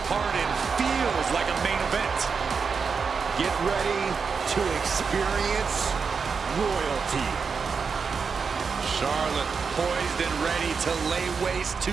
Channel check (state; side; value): quieter; left; 5.5 dB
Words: part in feels like a main event. Get ready to experience royalty. Charlotte poised and ready to lay waste to